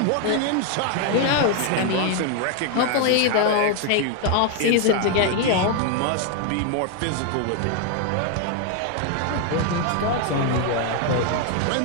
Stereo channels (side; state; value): both; different; correlation 0.00